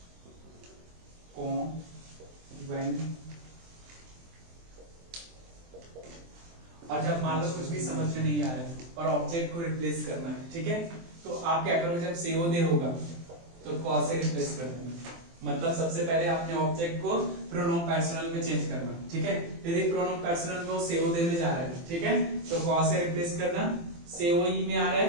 कौन when, और जब मान लो कुछ भी समझ में नहीं आ रहा है और ऑब्जेक्ट को रिप्लेस करना है, ठीक है? तो आप क्या करोगे, जब सेओदे होगा तो कॉ से रिप्लेस कर देना। मतलब सबसे पहले आपने ऑब्जेक्ट को प्रोनोम पर्सनल में चेंज करना, ठीक है? यदि प्रोनोम पर्सनल में वो सेओदे में जा रहा है, ठीक है, तो कॉ से रिप्लेस करना। सेओई में आ रहा है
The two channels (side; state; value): left; late; 23 ms